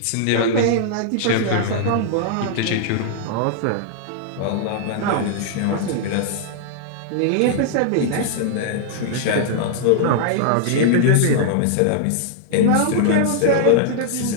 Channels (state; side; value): different; both; correlation -0.01